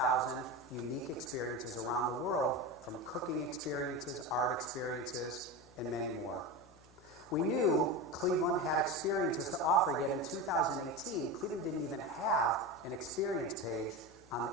unique experiences around the world, from cooking experiences, art experiences, and many more. We knew Cleveland had experiences to offer, yet in 2018, Cleveland didn't even have an experience page on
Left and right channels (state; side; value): normal; both; correlation 0.23